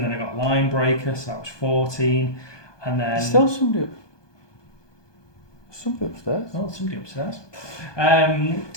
then I got line breaker, so that was 14, and then Still somebody upstairs. oh, somebody upstairs.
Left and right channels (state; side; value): late; right; 1.2 ms